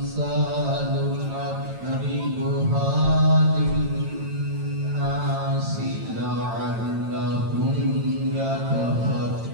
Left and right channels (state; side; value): late; left; 9.0 ms